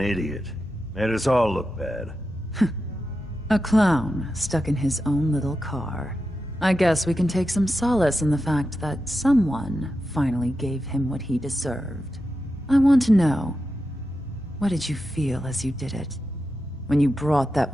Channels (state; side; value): normal; both; correlation 0.90